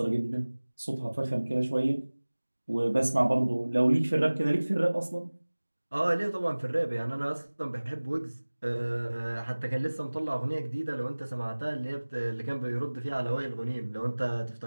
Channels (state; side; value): inverted; both; correlation -1.00